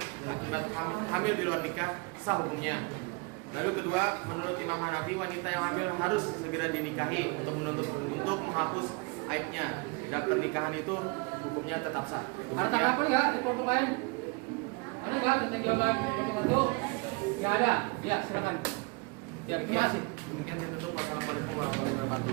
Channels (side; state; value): left; quieter; 29.5 dB